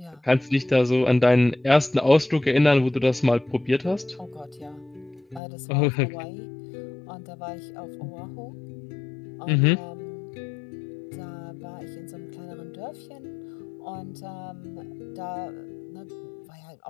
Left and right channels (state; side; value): drops out; right; at 5.4 s